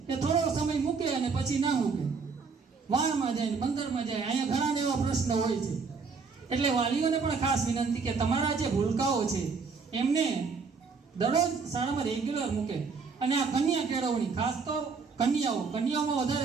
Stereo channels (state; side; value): quieter; left; 5.0 dB